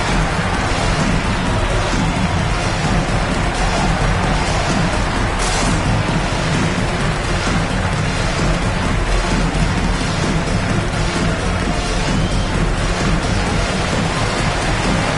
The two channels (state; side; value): identical; both; correlation 1.00